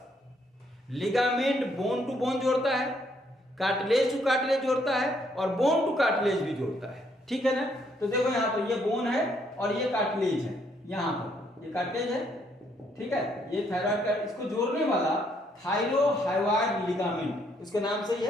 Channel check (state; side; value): normal; both; correlation 0.71